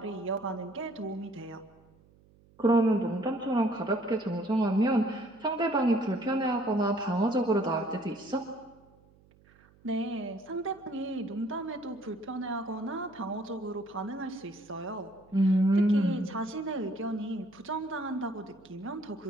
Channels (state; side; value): noise; right; hum, 29 dB below the sound